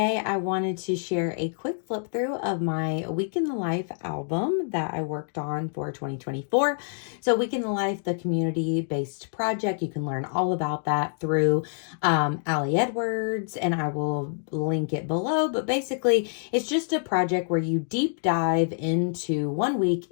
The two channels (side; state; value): right; silent; digital silence